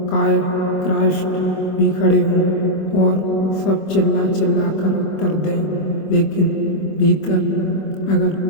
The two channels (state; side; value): late; right; 25 ms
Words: क्राइस्ट भी खड़े हों, और सब चिल्ला चिल्ला कर उत्तर दें, लेकिन भीतर